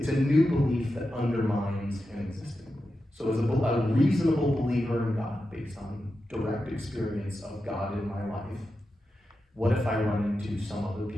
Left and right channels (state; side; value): normal; both; correlation 0.90